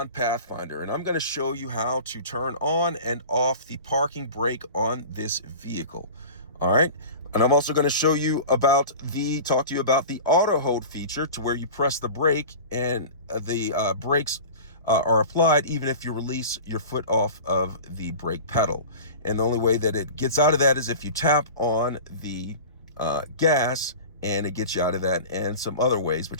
Pathfinder, and I'm going to show you how to turn on and off the parking brake on this vehicle. All right, and I'm also going to show you about talk to you about the auto hold feature, to where you press the brake and the brakes are applied even if you release your foot off of the brake pedal. And the only way that it gets out of that is if you tap on the gas, and it gets you out of that, and some other ways,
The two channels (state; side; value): inverted; both; correlation -0.35